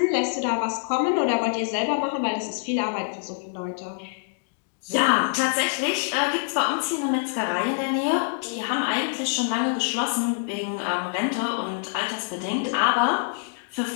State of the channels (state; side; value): silent; right; digital silence